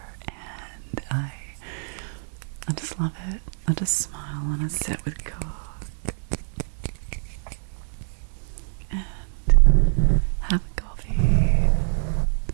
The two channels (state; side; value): silent; left; 62 dB below the other